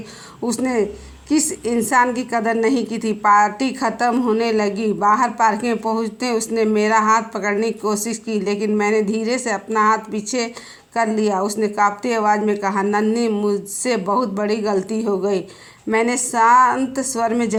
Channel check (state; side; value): identical; both; correlation 1.00